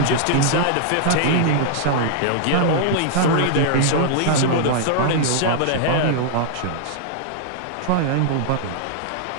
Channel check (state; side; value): different; both; correlation -0.01